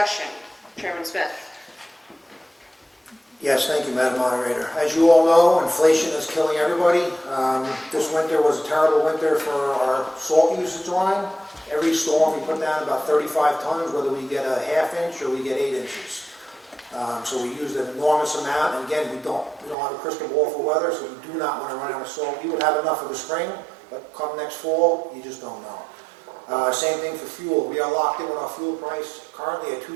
Chairman Smith. Yes, thank you, Madam Moderator. As you all know, inflation is killing everybody. This winter was a terrible winter for our salt usage line. Every storm, we put down about 35 tons, whether we get a half inch or we get 8 inches. So we used an enormous amount, and again, we don't have a crystal ball for weather, so we do not want to run out of salt. We would have enough for the spring, but come next fall, you just don't know. Same thing for fuel. We are locked in with our fuel price currently at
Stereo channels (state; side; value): drops out; left; at 19.8 s